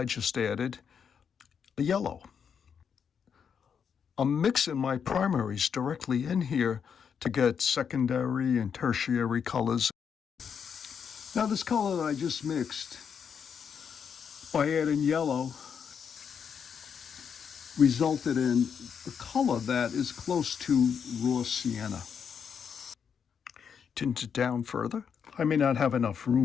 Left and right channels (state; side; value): quieter; right; 7.1 dB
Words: just added a yellow. I'm mixing my primaries directly in here to get secondary and tertiary colors. Now this color that I just mixed, by adding yellow, resulted in a color that is close to raw sienna. Tint it down further. I may not have enough